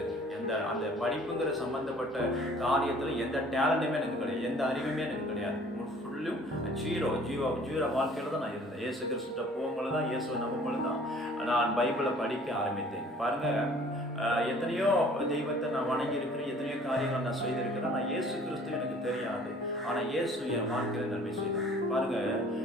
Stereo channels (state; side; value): normal; both; correlation 0.52